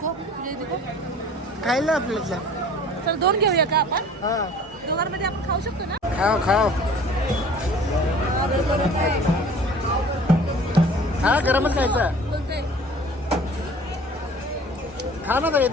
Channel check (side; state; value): both; normal; correlation 0.47